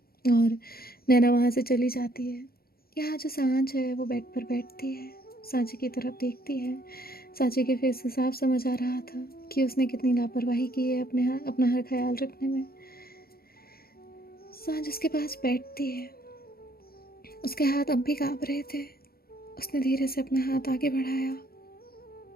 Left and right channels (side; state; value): right; late; 0.44 ms